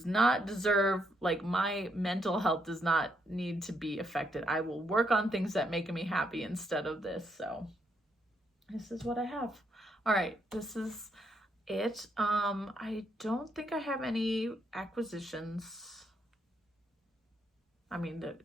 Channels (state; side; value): normal; both; correlation 0.75